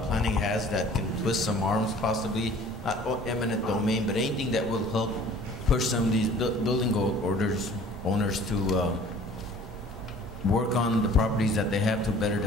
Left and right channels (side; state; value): both; normal; correlation 0.50